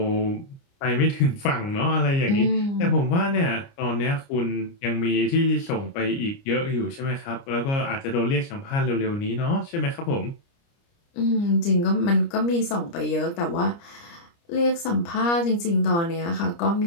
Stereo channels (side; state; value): right; late; 29 ms